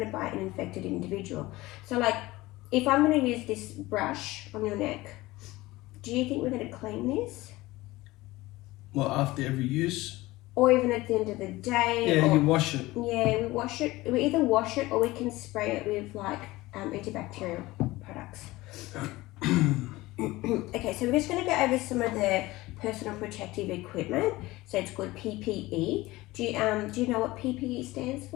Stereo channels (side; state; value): right; quieter; 19.3 dB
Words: by an infected individual. So if I'm going to use this brush on your neck, do you think we're going to clean this? Well, after every use? Or even at the end of the day? Yeah, you wash it. Yeah, we wash it. We either wash it or we can spray it with antibacterial products. Okay, so we're just going to go over some of the personal protective equipment. So it's called PPE. Do you know what PPE stands